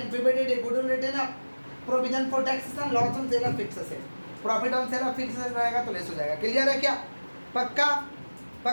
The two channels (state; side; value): inverted; both; correlation -1.00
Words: PBDT, goodwill written off, provision for taxes and loss on sale of fix asset. Profit on sale of fix asset रहेगा तो लेस हो जाएगा। क्लियर है क्या? पक्का?